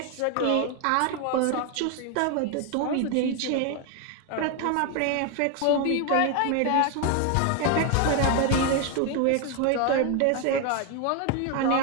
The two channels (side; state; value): both; different; correlation 0.01